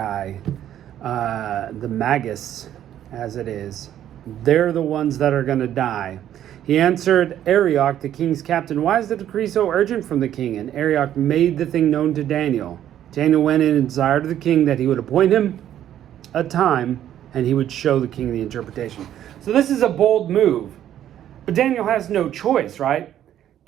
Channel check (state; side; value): quieter; left; 11.2 dB